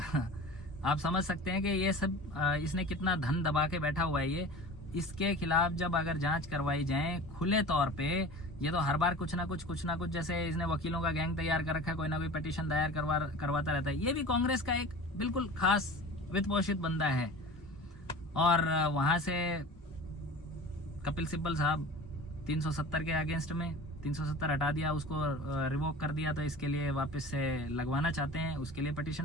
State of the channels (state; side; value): normal; both; correlation 0.38